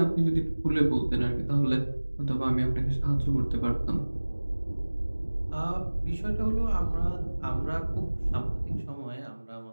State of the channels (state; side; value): inverted; both; correlation -1.00